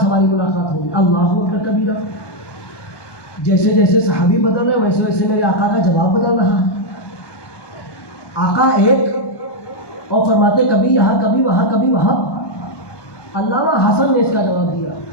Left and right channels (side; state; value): right; late; 1.2 ms